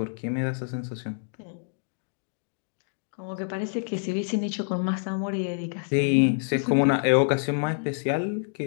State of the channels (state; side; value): silent; right; digital silence